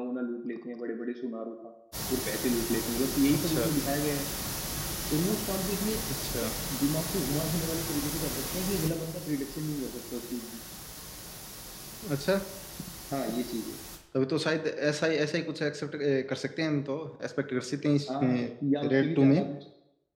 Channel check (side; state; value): both; identical; correlation 1.00